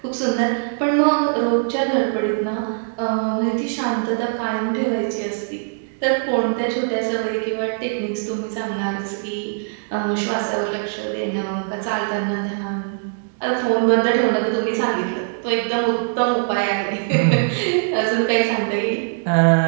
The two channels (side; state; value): left; silent; digital silence